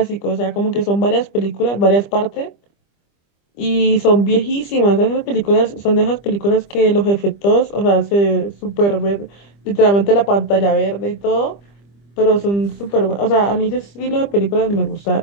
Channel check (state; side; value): late; right; 25 ms